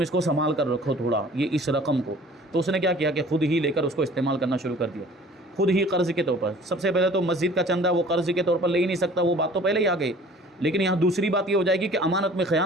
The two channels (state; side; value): normal; both; correlation 0.49